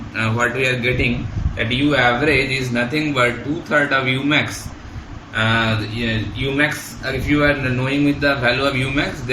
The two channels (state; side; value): identical; both; correlation 1.00